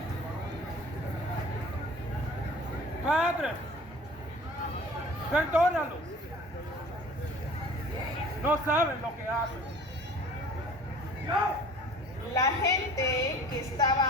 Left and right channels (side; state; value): both; normal; correlation 0.46